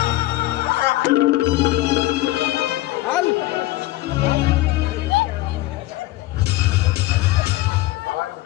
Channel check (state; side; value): quieter; right; 17.2 dB